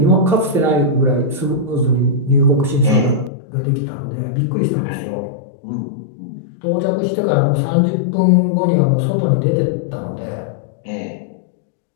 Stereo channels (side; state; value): right; drops out; at 3.3 s